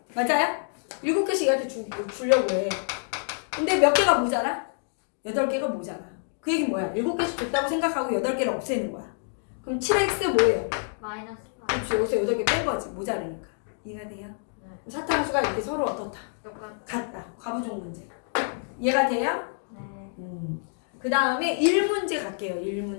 맞아요? 7개씩 얘한테 주려고 해. 근데 몇 개가 모자라? 8개가 모자라. 그 얘기는 뭐야? 7개씩 줬다고 생각하고 8개를 없애는 거야. 그럼 7x 뭐예요? 마이너스 8. 그렇지. 여기서 8개 뺀 거지. 모자라니까. 이해가 돼요? 네. 사탕수가 이렇게 서로 어떻다? 같다. 과부종 문제. 이해가 돼요? 네. 그 다음에 1문제 갈게요.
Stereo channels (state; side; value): silent; right; 60 dB below the other